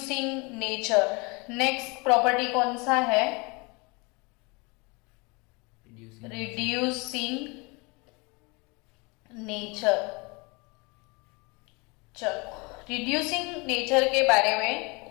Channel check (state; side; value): quieter; right; 28.2 dB